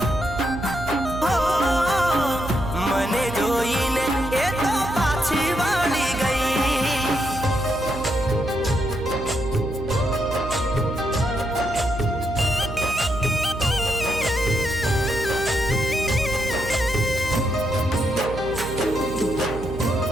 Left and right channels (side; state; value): right; noise; hum, 9 dB below the sound